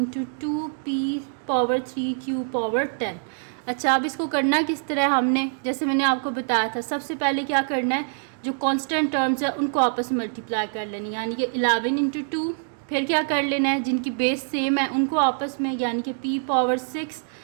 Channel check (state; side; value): silent; left; digital silence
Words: 2p power 3 q power 10। अच्छा, अब इसको करना किस तरह हमने, जैसे मैंने आपको बताया था, सबसे पहले क्या करना है, जो कांस्टेंट टर्म्स है उनको आपस में मल्टीप्लाई कर लेनी, यानी कि 11 इंटू 2। फिर क्या कर लेना है, जिनकी बेस सेम है उनको आपस में, यानी कि p power 6